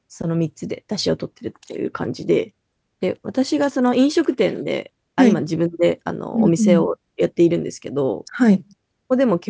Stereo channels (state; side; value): identical; both; correlation 1.00